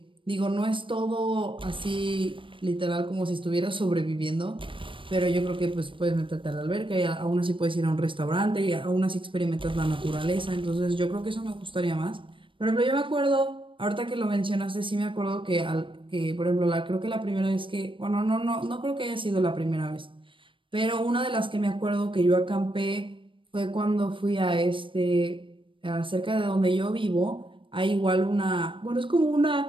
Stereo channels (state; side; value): late; left; 0.25 ms